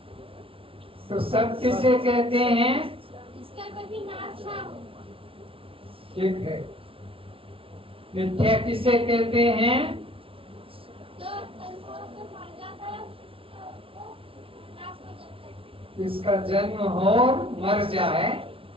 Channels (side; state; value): left; late; 0.26 ms